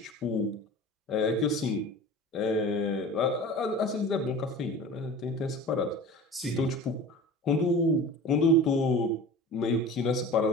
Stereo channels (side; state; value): both; normal; correlation 0.38